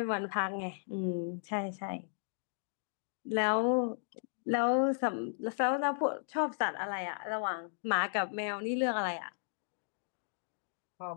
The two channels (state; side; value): silent; right; digital silence